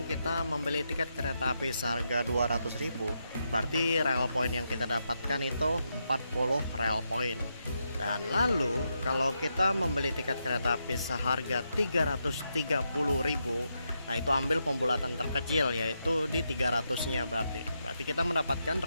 kita membeli tiket kereta api seharga 200.000, berarti Rail Point yang kita dapatkan itu 40 Rail Point. Dan lalu kalau kita membeli tiket kereta api seharga 330.000, Nah, itu ambil pembulatan terkecil yaitu di 300-nya berarti. Berarti kita mendapatkan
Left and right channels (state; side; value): inverted; both; correlation -0.83